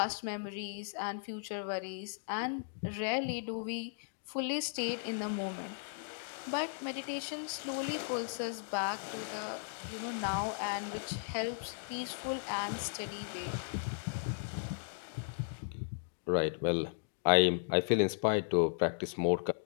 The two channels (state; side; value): silent; right; digital silence